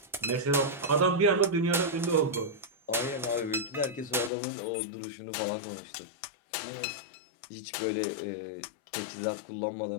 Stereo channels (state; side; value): drops out; right; at 4.3 s